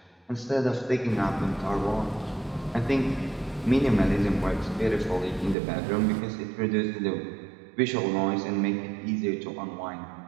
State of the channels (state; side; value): drops out; left; at 5.6 s